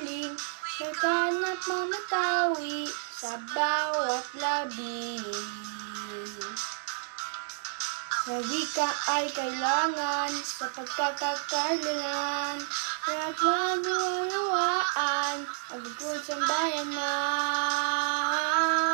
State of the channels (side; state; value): left; silent; digital silence